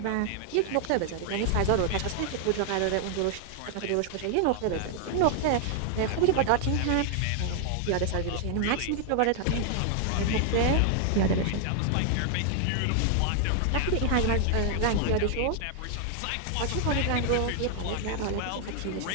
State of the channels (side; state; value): both; different; correlation 0.00